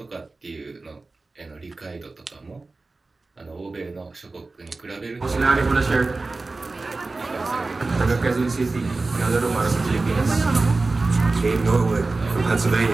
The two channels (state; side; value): quieter; left; 3.5 dB